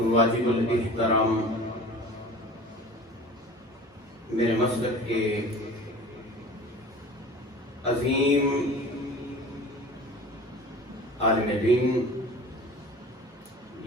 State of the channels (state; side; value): normal; both; correlation 0.40